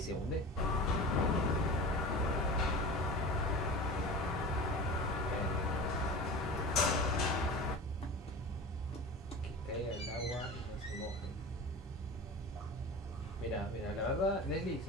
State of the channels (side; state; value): both; normal; correlation 0.33